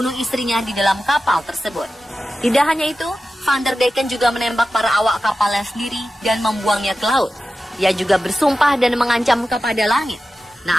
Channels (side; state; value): both; normal; correlation 0.93